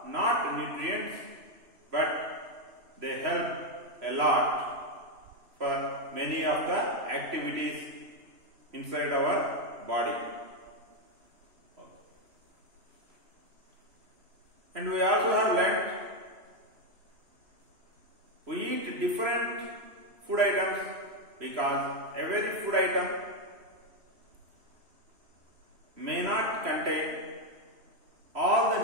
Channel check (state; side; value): late; left; 3.0 ms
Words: not nutrients, but they help a lot for many of the activities inside our body. And we also have learnt we eat different food items because every food item may not contain all the